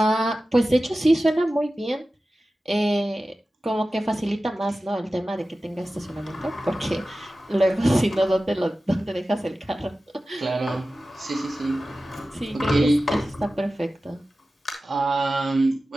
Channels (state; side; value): normal; both; correlation 0.95